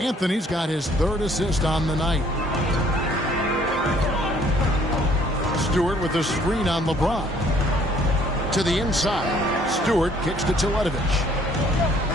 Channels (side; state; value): both; normal; correlation 0.61